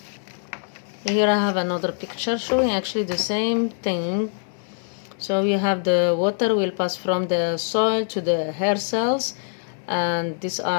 Here I have another picture showing actually the same thing. So you have the water will pass from the soil to the hair cells, and these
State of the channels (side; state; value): right; silent; 60 dB below the other